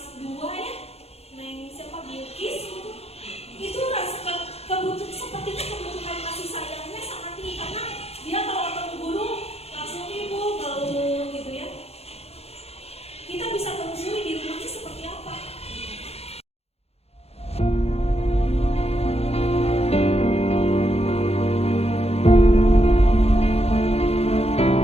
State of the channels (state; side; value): late; right; 0.30 ms